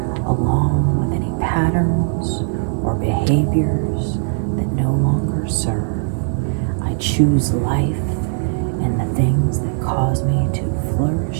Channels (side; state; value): left; silent; 55 dB below the other